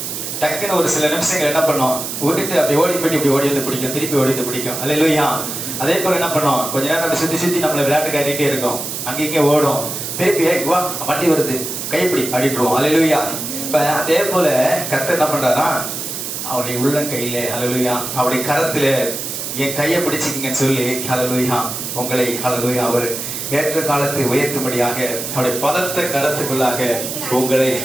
டக்குன்னு ஒரு சில நிமிஷங்கள் என்ன பண்ணோம், விட்டுட்டு அப்படி ஓடி போயிட்டு இப்படி ஓடி வந்து பிடிக்கும், திருப்பி ஓடி வந்து பிடிக்கும். அல்லேலூயா. அதே போல என்ன பண்ணோம், கொஞ்ச நேரம் அப்படி சுத்தி நம்மளை விளையாட்டு காட்டிகிட்டே இருக்கோம். அங்கே ஓடும், திருப்பி வா வண்டி வருது கைப்பிடி அப்படின்றோம். அல்லேலூயா. இப்ப அதே போல கர்த்தர் என்ன பண்றாரா, அவருடைய உள்ளங்கையில, அல்லேலூயா, அவருடைய கரத்துல என் கையை பிடிச்சிக்கிங்கன்னு சொல்லி, அல்லேலூயா, உங்களை, அல்லேலூயா, அவர் ஏற்ற காலத்தை உயர்த்தும்படியாக அவருடைய பலத்த கரத்துக்குள்ளாக உங்களை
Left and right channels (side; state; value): right; noise; hiss, 5 dB below the sound